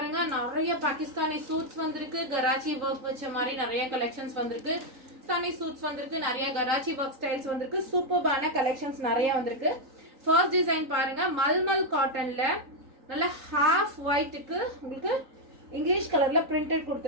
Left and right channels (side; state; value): left; late; 3.9 ms